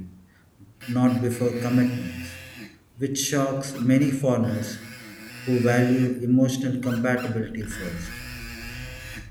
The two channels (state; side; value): identical; both; correlation 1.00